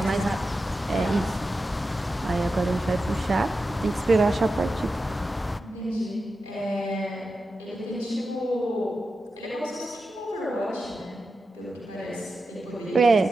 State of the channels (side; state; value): both; normal; correlation 0.91